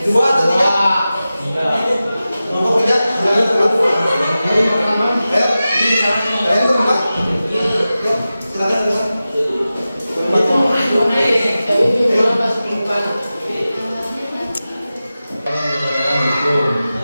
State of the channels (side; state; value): both; inverted; correlation -0.94